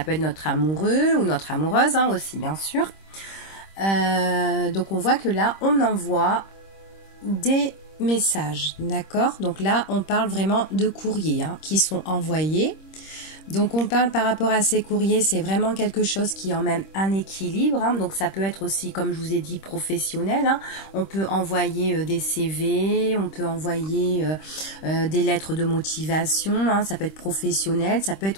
être notre amoureux ou notre amoureuse aussi, bien sûr. Donc on voit que là on envoie des messages, d'accord? Donc là on parle vraiment de courriers qui sont envoyés. Donc on parle par rapport à ces courriers, c'est vraiment quelque chose qui emmène un équilibre. Donc ça peut être aussi, comme je vous ai dit, professionnel. On peut envoyer des CV, on peut envoyer des lettres de motivation. Ça peut être professionnel, ça peut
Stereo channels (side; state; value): right; late; 26 ms